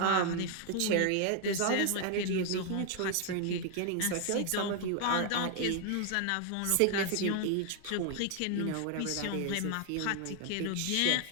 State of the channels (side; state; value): both; different; correlation 0.00